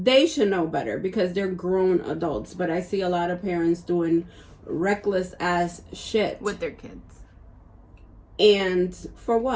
should know better because they're grown adults. But I see a lot of parents doing reckless ass shit with their kids. And for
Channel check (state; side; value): identical; both; correlation 1.00